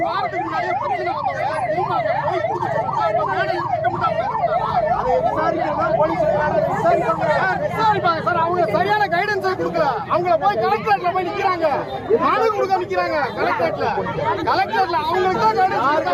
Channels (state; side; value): identical; both; correlation 1.00